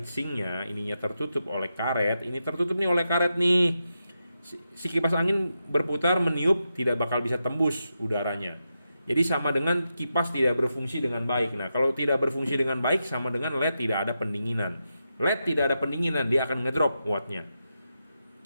ininya tertutup oleh karet, ini tertutup nih oleh karet nih, si kipas angin berputar meniup tidak bakal bisa tembus udaranya. Jadi sama dengan kipas tidak berfungsi dengan baik. Nah, kalau tidak berfungsi dengan baik sama dengan LED tidak ada pendinginan. LED tidak ada pendinginan, dia akan ngedrop wattnya.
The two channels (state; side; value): inverted; both; correlation -0.87